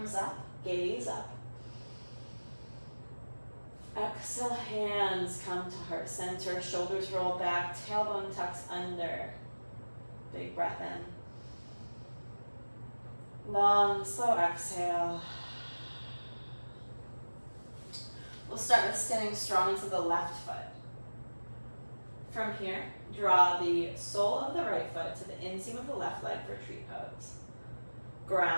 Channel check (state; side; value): inverted; both; correlation -1.00